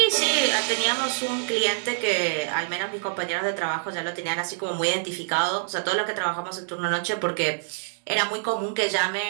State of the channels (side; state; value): left; silent; digital silence